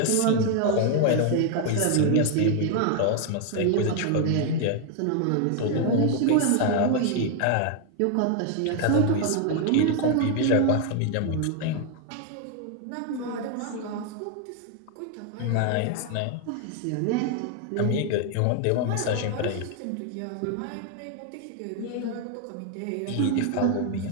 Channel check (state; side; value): different; both; correlation 0.00